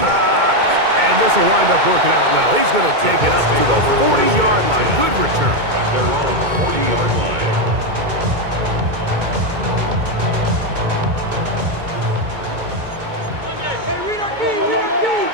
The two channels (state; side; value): late; left; 2.2 ms